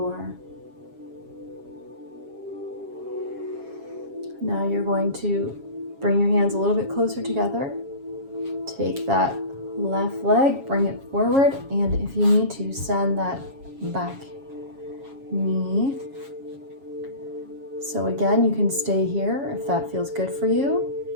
Now you're going to bring your hands a little bit closer together. Take that left leg, bring it forward, and if you need to, send that back knee. So again, you can stay here if that feels good for you.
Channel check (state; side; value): late; left; 7.3 ms